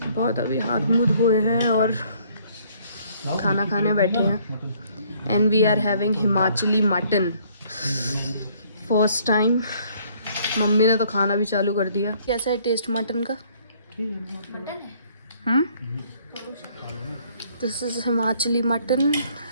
बहुत अभी हाथ मुँह धोए हैं और खाना खाने बैठे हैं। And we are having Himachali mutton first time. मम्मी ने तो खाना भी चालू कर दिया। कैसा है टेस्ट मटन का? This is Himachali mutton.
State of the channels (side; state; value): both; inverted; correlation -0.62